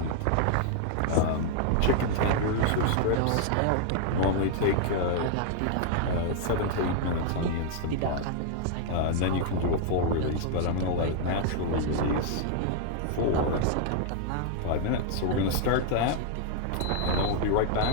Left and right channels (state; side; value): different; both; correlation 0.00